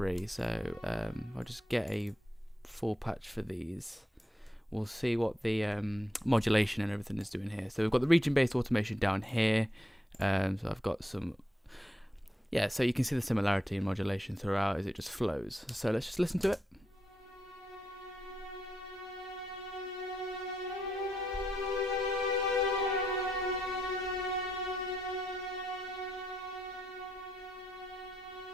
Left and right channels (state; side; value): normal; both; correlation 0.81